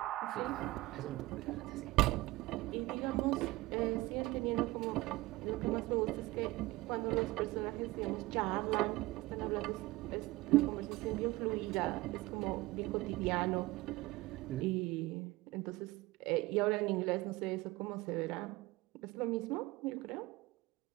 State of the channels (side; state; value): left; quieter; 19.8 dB